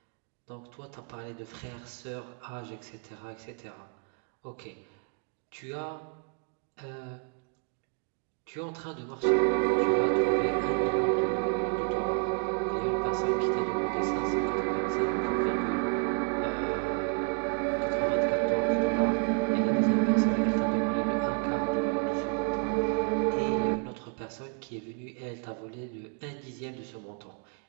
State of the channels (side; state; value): left; quieter; 39.3 dB